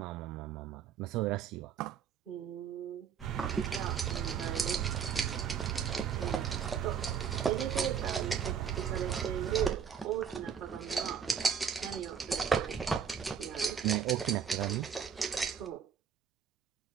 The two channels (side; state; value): left; quieter; 7.3 dB